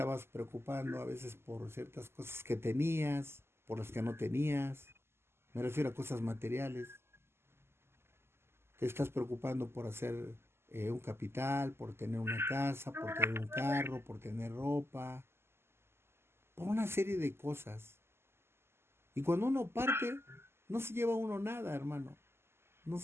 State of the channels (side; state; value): left; late; 0.12 ms